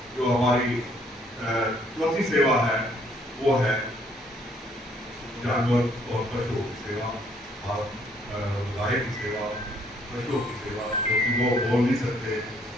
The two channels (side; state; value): both; normal; correlation 0.66